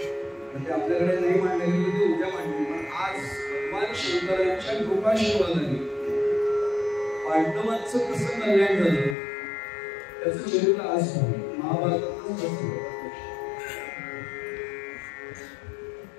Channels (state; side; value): drops out; right; at 9.2 s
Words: ते आपल्याकडे नाही मांडले गेले ते उद्या मांडले पण आज भगवान शंकरांच्या कृपाशीर्वादाने पांडवांचं कसं कल्याण झालं त्याचं चरित्र आज महाभारतातच